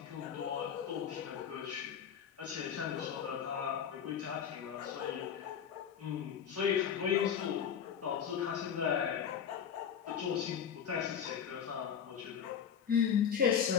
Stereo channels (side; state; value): right; quieter; 8.0 dB